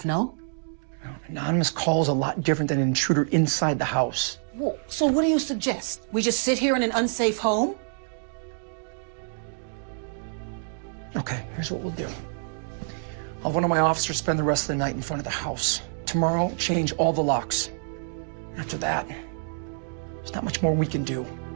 no? Anonymous call is a lot different than an intruder inside the house. Well, so what do you suggest? We just sit here in an unsafe home? Okay, here's what we'll do. I'll have one of my officers spend the rest of the night in front of the house. Tomorrow, change all the locks. After that, there's not much more we can do.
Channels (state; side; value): silent; left; digital silence